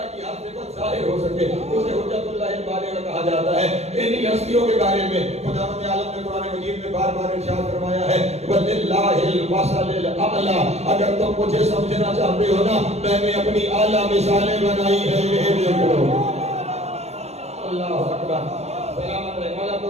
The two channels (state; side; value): late; left; 0.31 ms